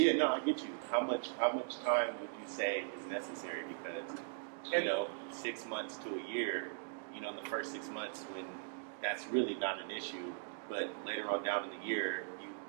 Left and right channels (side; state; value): left; silent; digital silence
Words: no, I get you. How much time would you say is necessary? Because 6 months to a year, in the first 6 months when that's really not an issue, but later on down in the year, you